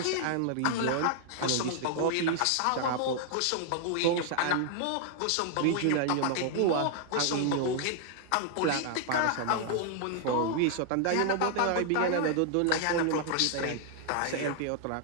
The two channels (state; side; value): different; both; correlation 0.00